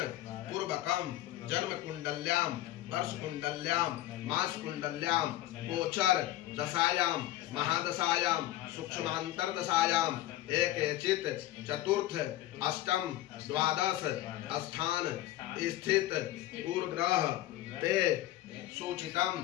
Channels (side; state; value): right; quieter; 14.7 dB